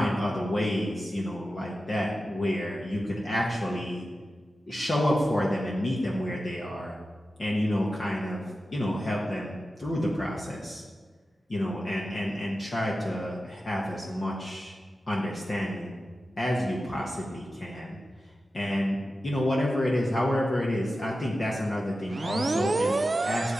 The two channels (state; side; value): normal; both; correlation 0.93